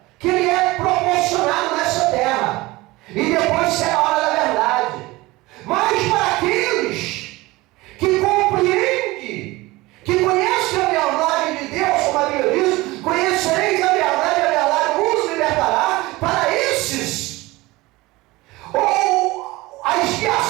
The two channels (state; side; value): quieter; left; 20.7 dB